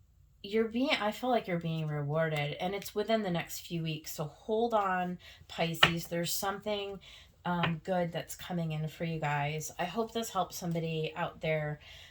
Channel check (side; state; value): both; identical; correlation 1.00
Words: I feel like you're being rewarded, and it's within the next few weeks. So hold on, Pisces. There's something good that's coming in for you guys. I hope this helps somebody out there.